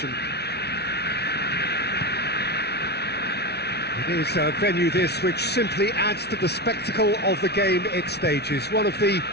It is a venue this which simply adds to the spectacle of the game it stages. One of the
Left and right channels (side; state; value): right; late; 0.49 ms